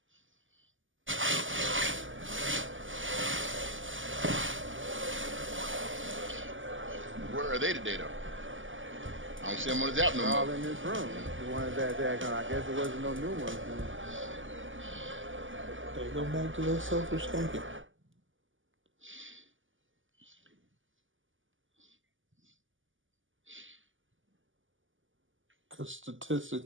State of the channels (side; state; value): left; late; 0.57 ms